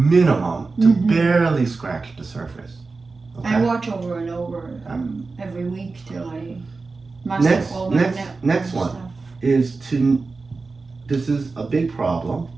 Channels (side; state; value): left; quieter; 4.0 dB